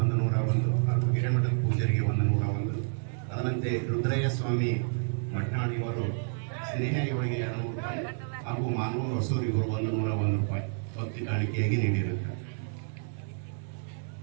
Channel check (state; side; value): silent; left; 58 dB below the other